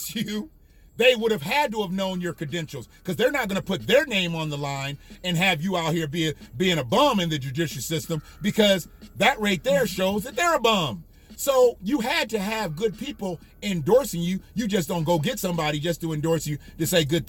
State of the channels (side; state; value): both; identical; correlation 1.00